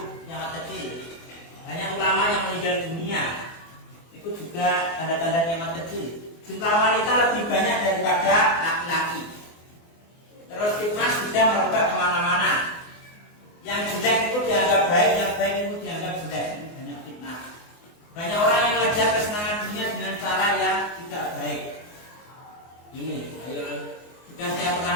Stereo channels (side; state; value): right; late; 24 ms